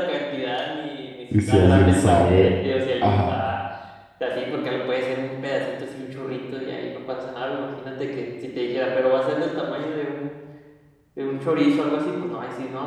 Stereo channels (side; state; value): both; identical; correlation 1.00